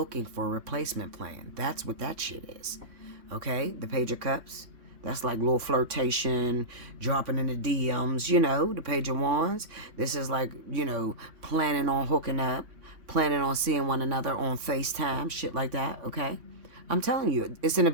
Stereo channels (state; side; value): late; left; 3.5 ms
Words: for a replacement plan. That's what that shit is. Okay, the Page of Cups. That's like little flirtation, dropping in the DMs, the Page of Wands. This is like, planning on hooking up, planning on seeing one another on FaceTime, shit like that, okay? I'm telling you, it's in the